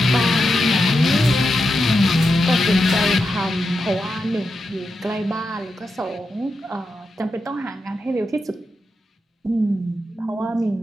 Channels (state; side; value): normal; both; correlation 0.87